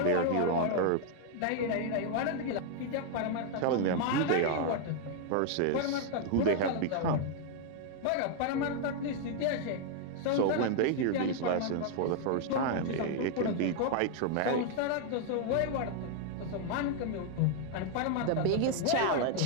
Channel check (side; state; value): both; different; correlation 0.00